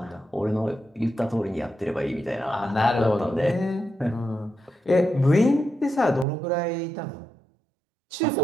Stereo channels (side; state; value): left; drops out; at 6.2 s